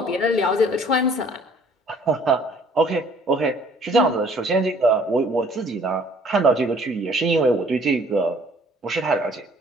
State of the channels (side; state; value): both; normal; correlation 0.57